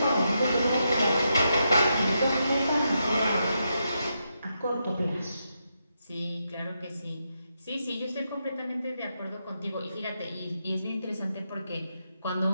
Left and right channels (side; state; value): both; inverted; correlation -0.83